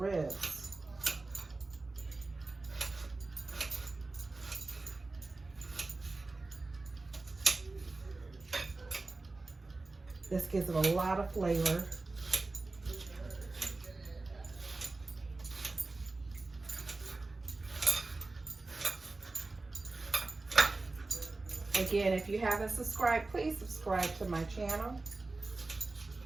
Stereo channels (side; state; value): left; quieter; 3.4 dB